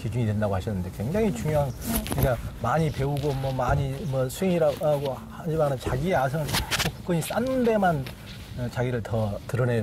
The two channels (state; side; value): identical; both; correlation 1.00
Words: 된다고 하셨는데 굉장히 중요한 그러니까 많이 배우고 뭐 많이 뭐 수행이라고 하지만은 자기의 아성을 계속 굳건히 쌓는 데만 자기를 더